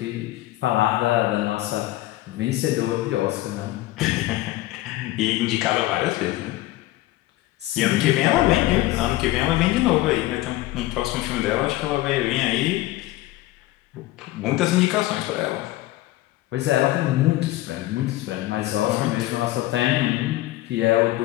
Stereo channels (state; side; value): quieter; right; 16.9 dB